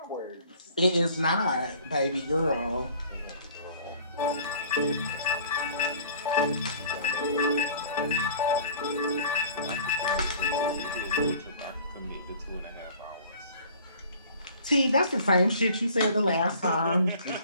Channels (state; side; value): inverted; both; correlation -0.50